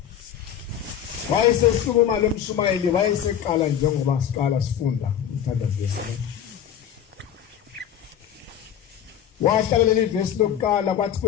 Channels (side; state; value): right; quieter; 9.5 dB